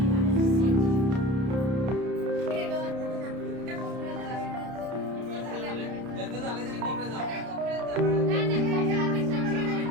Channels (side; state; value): left; late; 31 ms